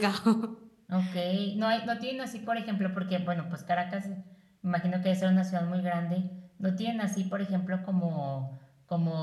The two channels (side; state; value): both; identical; correlation 1.00